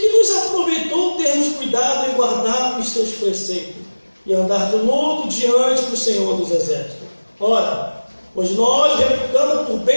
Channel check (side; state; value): both; inverted; correlation -1.00